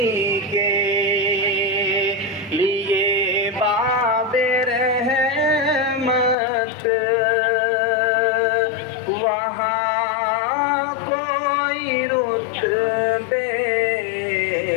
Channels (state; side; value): drops out; right; at 6.4 s